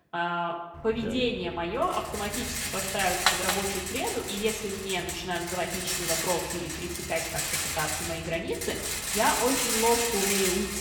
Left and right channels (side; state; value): both; identical; correlation 1.00